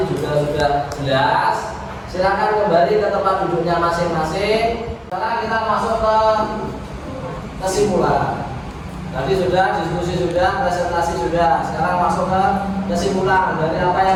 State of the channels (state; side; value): identical; both; correlation 1.00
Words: juga sudah jelas. Silakan kembali ke tempat duduknya masing-masing. Sekarang kita masuk ke kesimpulan. Tadi sudah diskusi, sudah presentasi, sudah. Sekarang masuk ke kesimpulan dari apa